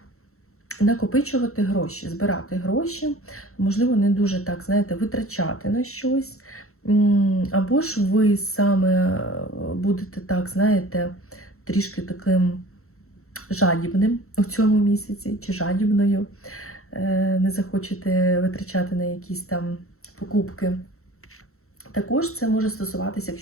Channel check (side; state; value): right; late; 0.63 ms